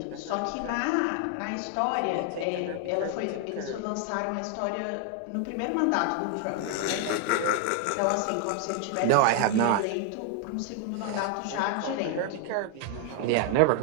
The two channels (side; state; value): both; different; correlation 0.00